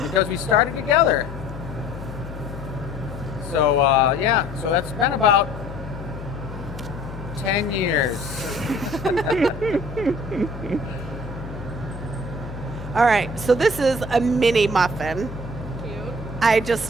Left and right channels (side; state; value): left; noise; hum, 11 dB below the sound